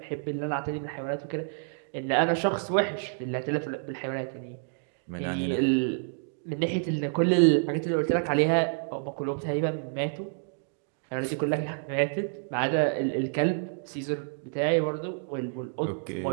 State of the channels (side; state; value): left; silent; digital silence